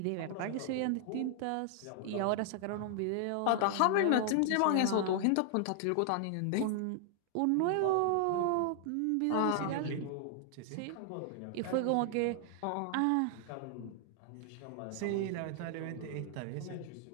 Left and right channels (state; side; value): different; both; correlation 0.00